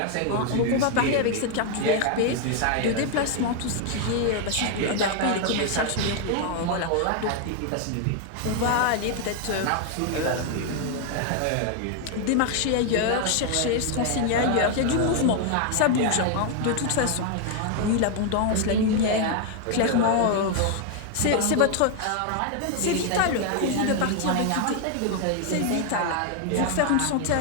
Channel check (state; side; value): different; both; correlation 0.00